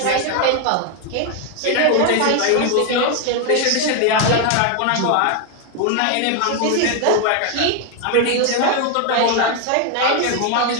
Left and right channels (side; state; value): both; different; correlation 0.01